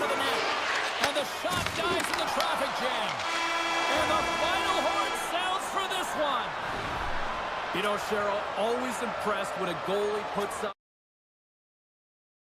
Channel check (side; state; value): both; identical; correlation 1.00